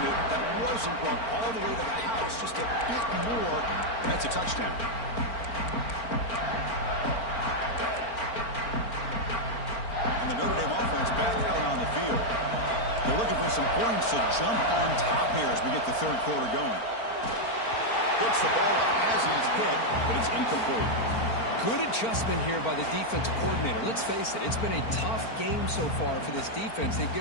that wasn't brought all the way to the house. Just a bit more. That's a touchdown. And the Notre Dame offense back out on the field. They're looking for some points to jump on top here as we get the third quarter going. Gets the ball up as he's hit, but it's incomplete. Good adjustment here by the defensive coordinator. Let's face it, it's been a tough game so far for this defense. They've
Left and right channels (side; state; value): right; late; 4.4 ms